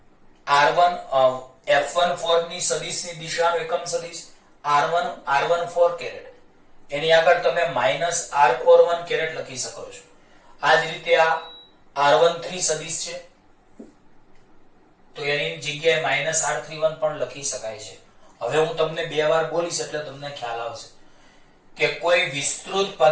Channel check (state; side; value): identical; both; correlation 1.00